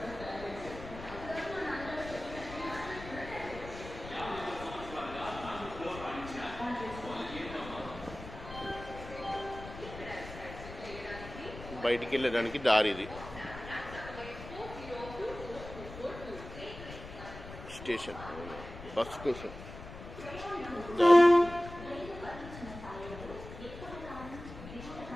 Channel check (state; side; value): noise; left; rumble, 13 dB below the sound